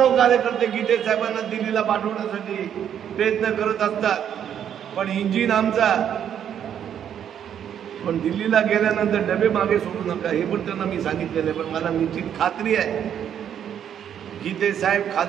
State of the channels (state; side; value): quieter; left; 9.2 dB